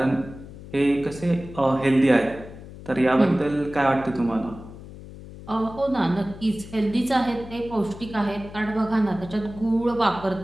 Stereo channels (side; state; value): left; noise; hum, 15 dB below the sound